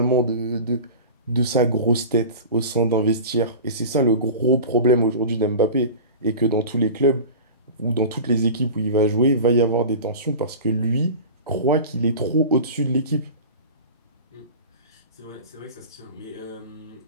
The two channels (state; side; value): inverted; both; correlation -0.34